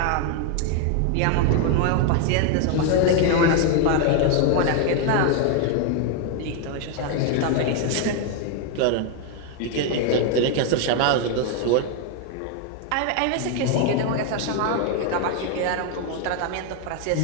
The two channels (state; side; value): different; both; correlation 0.00